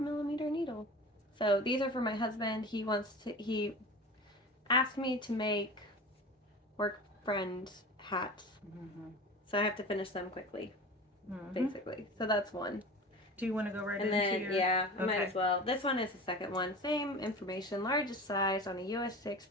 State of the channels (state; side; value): normal; both; correlation 0.34